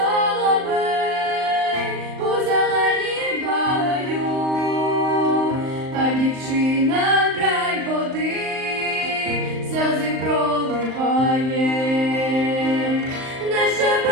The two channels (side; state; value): left; late; 38 ms